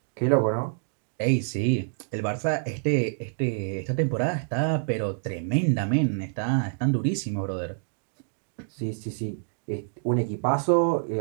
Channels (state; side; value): silent; left; digital silence